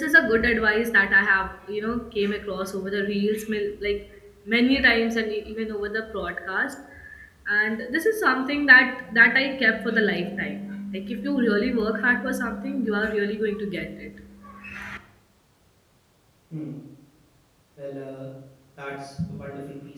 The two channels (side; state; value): both; identical; correlation 1.00